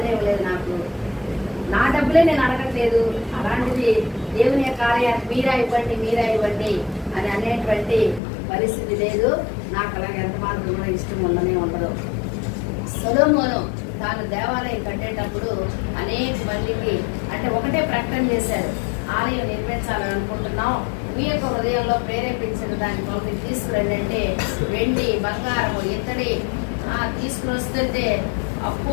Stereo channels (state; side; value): drops out; right; at 8.2 s